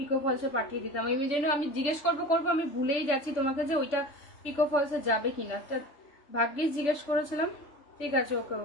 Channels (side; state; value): right; late; 3.4 ms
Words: ফলসে পাঠিয়ে দিতাম। এই জন্য আমি জিজ্ঞেস করবো আমি ভুলেই যাচ্ছি তোমাকে যে ওইটা পিকো ফলসে যাবে কিনা। ভাগ্যিস জিজ্ঞেস করেছিলাম। ঠিক আছে, ওকে